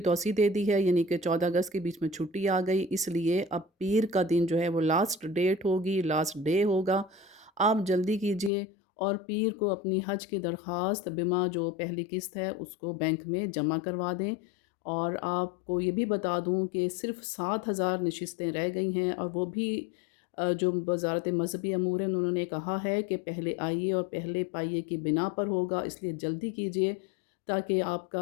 توسیع دے دی ہے، یعنی کہ 14 اگست کے بیچ میں چھٹی آ گئی، اس لیے اب پیر کا دن جو ہے وہ لاسٹ ڈیٹ ہوگی، لاسٹ ڈے ہوگا۔ آپ جلدی کیجئے اور پیر کو اپنی حج کی درخواست بما جو پہلی قسط ہے اس کو بینک میں جمع کروا دیں۔ اور آپ کو یہ بھی بتا دوں کہ صرف 7,000 نشستیں رہ گئی ہیں، اور وہ بھی جو وزارت مذہبی امور ہے انہوں نے کہا ہے کہ پہلے آئیے اور پہلے پائیے کی بنا پر ہوگا، اس لیے جلدی کیجئے تاکہ آپ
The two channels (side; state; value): right; drops out; at 8.5 s